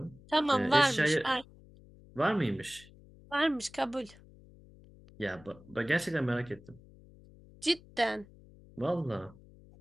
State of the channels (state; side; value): noise; left; hum, 23 dB below the sound